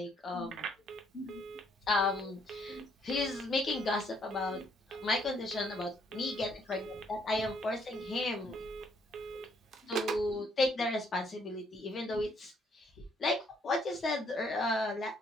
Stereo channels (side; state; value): both; normal; correlation 0.68